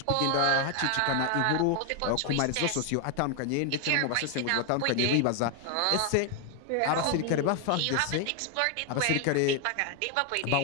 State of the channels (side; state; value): both; different; correlation 0.00